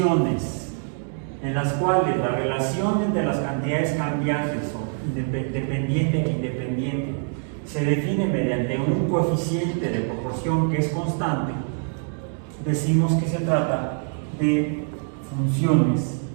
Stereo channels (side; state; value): left; silent; 62 dB below the other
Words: en las cuales la relación entre las cantidades cambiantes o dependiente e independiente se define mediante un coeficiente de proporción que es constante, decimos que se trata de funciones